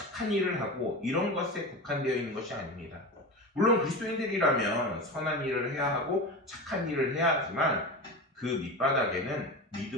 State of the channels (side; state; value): both; normal; correlation 0.26